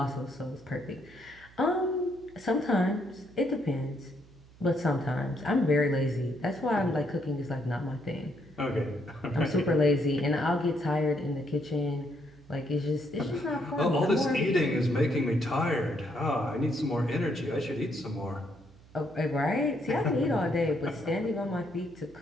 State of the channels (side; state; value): right; noise; hum, 24 dB below the sound